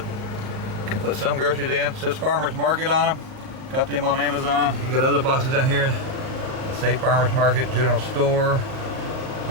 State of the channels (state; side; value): late; left; 38 ms